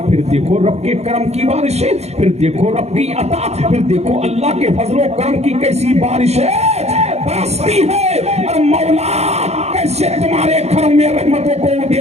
پھر دیکھو رب کے کرم کی بارشیں, پھر دیکھو رب کی عطا, پھر دیکھو اللہ کے فضل و کرم کی کیسی بارشیں برستی ہے. اور مولا کیسے تمہارے گھر میں رحمتوں کو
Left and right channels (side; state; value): left; late; 0.31 ms